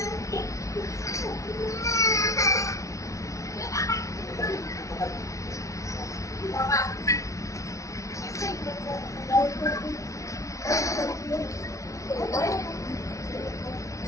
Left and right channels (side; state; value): right; late; 0.15 ms